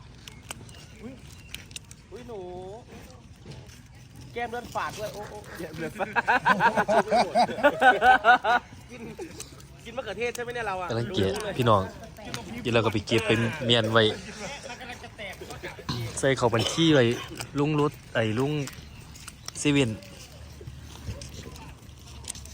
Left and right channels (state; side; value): identical; both; correlation 1.00